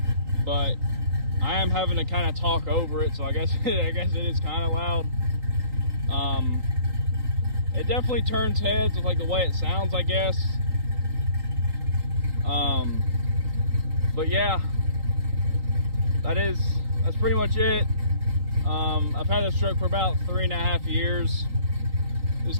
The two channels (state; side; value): late; left; 3.8 ms